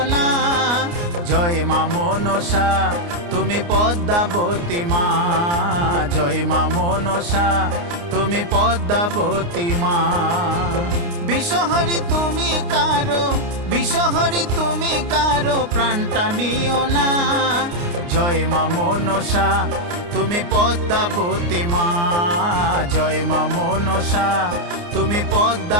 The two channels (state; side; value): late; left; 29 ms